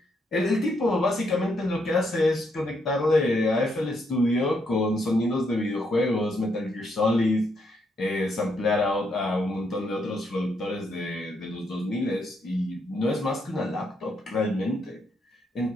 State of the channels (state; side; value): normal; both; correlation 0.76